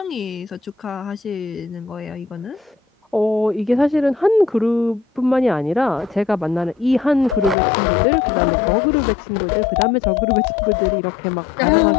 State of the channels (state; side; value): drops out; right; at 7.6 s